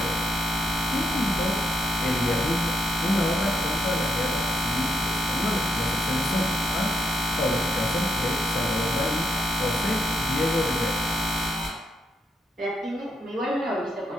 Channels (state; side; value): normal; both; correlation 0.78